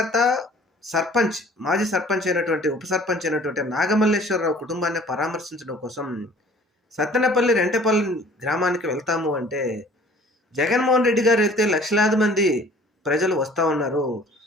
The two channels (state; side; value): normal; both; correlation 0.51